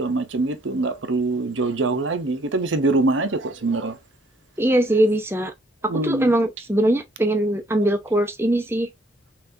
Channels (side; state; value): both; normal; correlation 0.64